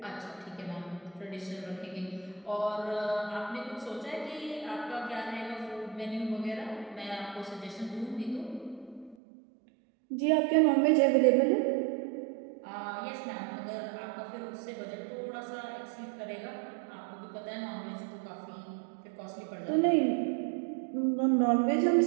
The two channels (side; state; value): left; drops out; at 9.2 s